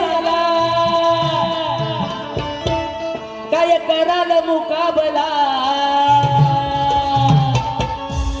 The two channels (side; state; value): both; identical; correlation 1.00